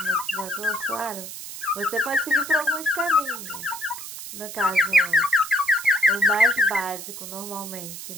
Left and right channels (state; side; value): noise; right; hiss, 10 dB below the sound